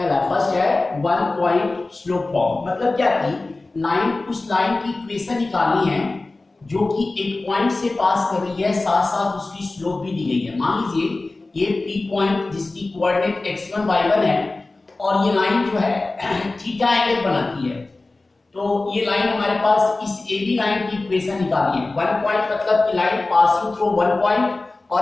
फर्स्ट है वन पॉइंट स्लो फॉर्म। मतलब क्या कि लाइन, उस लाइन की इक्वेशन निकालनी है जो कि एक पॉइंट से पास कर रही है, साथ साथ उसकी स्लोप भी दी गई है। मान लीजिए ये P पॉइंट जिसकी कोऑर्डिनेट x1 y1 है और ये लाइन जो है थीटा एंगल बनाती है। तो ये लाइन हमारे पास इस AB लाइन की इक्वेशन निकाली है। वन पॉइंट मतलब कि line passing through one point और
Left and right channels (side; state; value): right; quieter; 3.2 dB